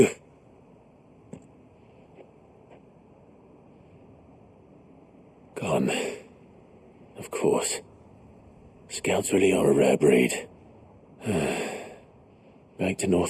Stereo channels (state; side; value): identical; both; correlation 1.00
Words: Gone. Of course. Scouts really are a rare breed. Back to